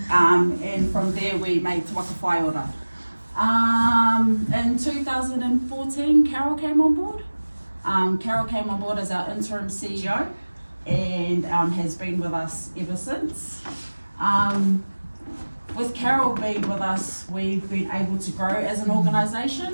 And from there we made Te Waka Whaiora. In 2014, Carol came on board. Carol came on board as our interim CEO and has been with us ever since. With Carol being with us, we've been able to grow as an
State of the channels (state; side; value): inverted; both; correlation -1.00